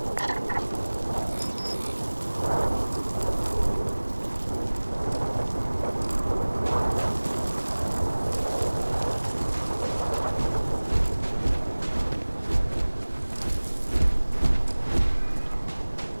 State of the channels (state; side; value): inverted; both; correlation -1.00